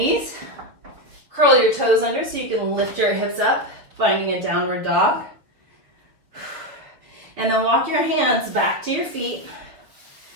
Curl your toes under so you can lift your hips up, finding a downward dog. And then walk your hands back to your feet.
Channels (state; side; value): late; left; 6.6 ms